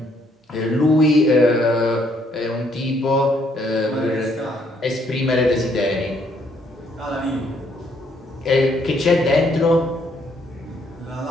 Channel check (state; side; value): normal; both; correlation 0.69